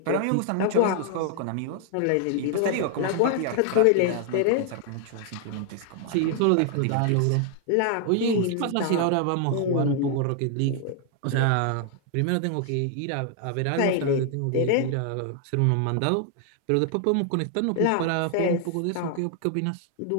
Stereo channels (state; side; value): different; both; correlation 0.00